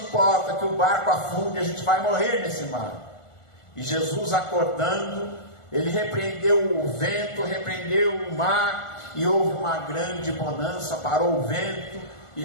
que o barco afunde, a gente vai morrer nesse mar. E Jesus, acordando, ele repreendeu o vento, repreendeu o mar, e houve uma grande bonança, parou o vento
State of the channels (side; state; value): right; late; 1.4 ms